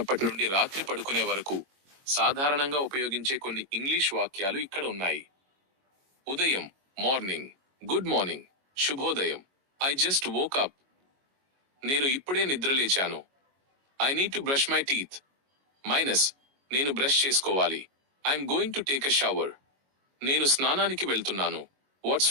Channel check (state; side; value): late; left; 22 ms